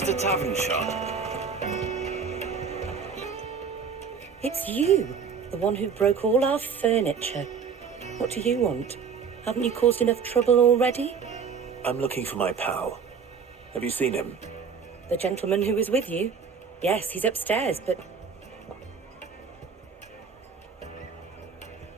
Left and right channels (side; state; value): left; quieter; 6.1 dB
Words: the tavern shut? It's you, the one who broke all our furniture. What do you want? Haven't you caused enough trouble already? I'm looking for my pal. Have you seen him? The gentleman who was with you? Yes, he's upstairs, but...